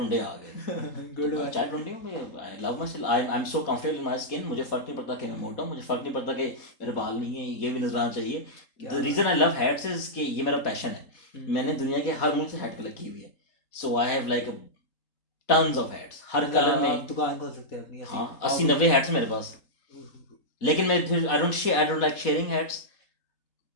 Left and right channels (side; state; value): right; late; 3.8 ms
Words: आ गए, गुड तो चाय टुंडे में I love my self, I am so comfortable in my skin, मुझे फर्क नहीं पड़ता कि मैं मोटा हूं, मुझे फर्क नहीं पड़ता कि मेरे बाल नहीं है, ये भी नजर आना चाहिए। The reason I love hats is कि ये मेरा पैशन है, मैंने दुनिया के हर मुल्क से हैट कलेक्ट की हुई है, so I have like tons of hats हर कलर में। दुकान खोल सकते हैं अपनी। हाँ 80-90 हैट्स मेरे पास, लेकिन मैं फिर I don't like sharing hats,